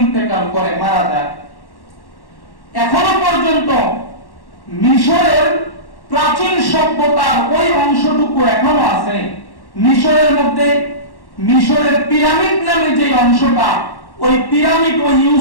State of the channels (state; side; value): late; right; 1.1 ms